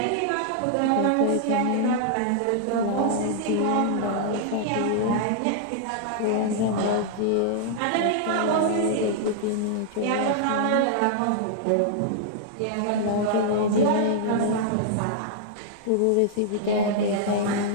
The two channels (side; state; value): both; different; correlation -0.01